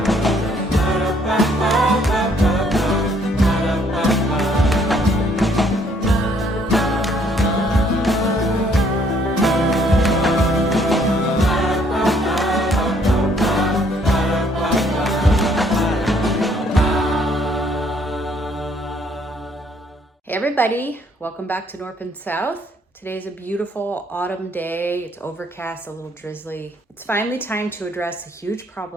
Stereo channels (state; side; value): normal; both; correlation 0.65